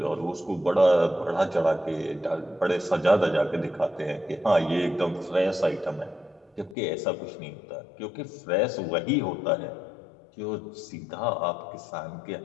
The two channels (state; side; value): drops out; right; at 6.8 s